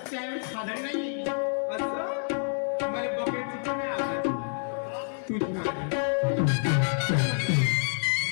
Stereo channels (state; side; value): silent; right; 57 dB below the other